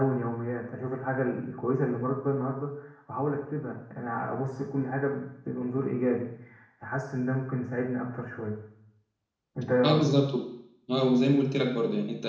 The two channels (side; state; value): both; identical; correlation 1.00